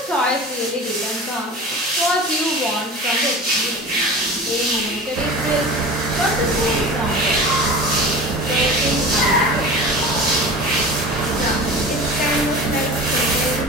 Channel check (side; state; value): both; normal; correlation 0.34